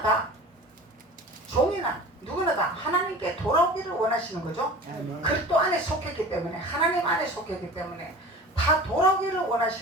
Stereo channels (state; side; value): normal; both; correlation 0.39